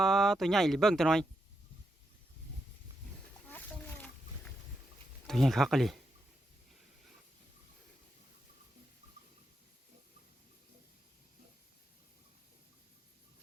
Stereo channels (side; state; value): both; normal; correlation 0.83